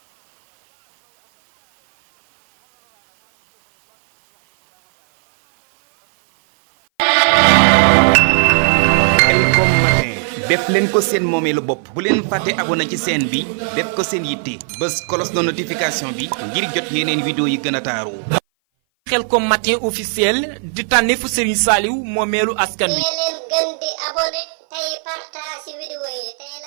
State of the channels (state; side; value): silent; left; 59 dB below the other